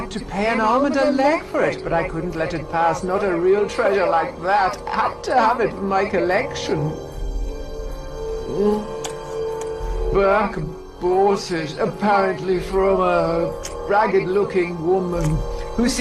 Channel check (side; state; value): both; identical; correlation 1.00